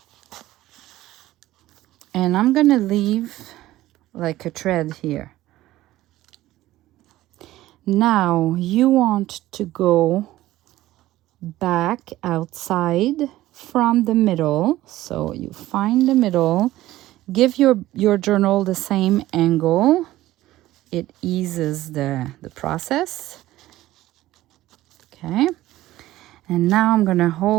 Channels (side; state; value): left; quieter; 15.7 dB